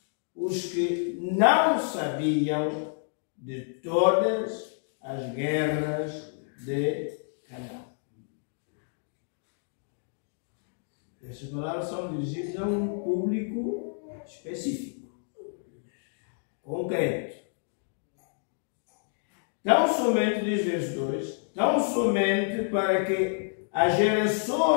os que não sabiam de todas as guerras de Canaã. Essas palavras são dirigidas a um público específico, concreto. Tão somente, diz verso 2, tão somente para que as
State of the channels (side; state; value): right; silent; digital silence